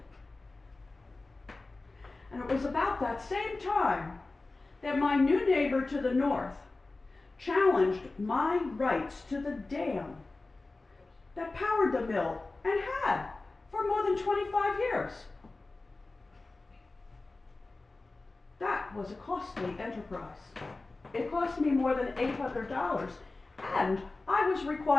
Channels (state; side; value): quieter; right; 3.3 dB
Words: And it was about that same time that my new neighbor to the north challenged my rights to the dam that powered the mill and had for more than 25 years. That was a costly enterprise. It cost me more than $800, and I was